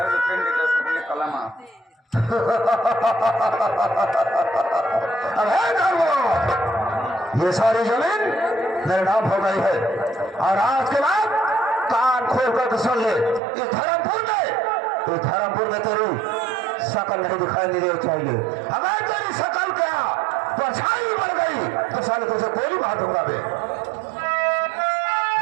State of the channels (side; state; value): left; drops out; at 13.4 s